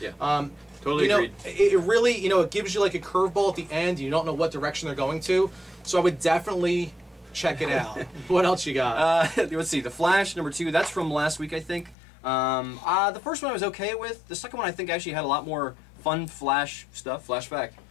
Totally agreed. It really, you know, it gives you like a curveball at the end. You don't know what direction they're going to. So I would definitely check it out. What else you got? Let's see. The Flash #2. That's from last week, I think. The first one I was okay with. The second one I think actually had a lot more fun Flash stuff. Flashback.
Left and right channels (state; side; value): drops out; right; at 12.0 s